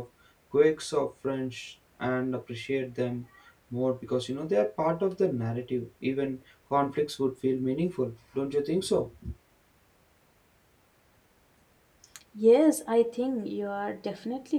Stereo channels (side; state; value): both; identical; correlation 1.00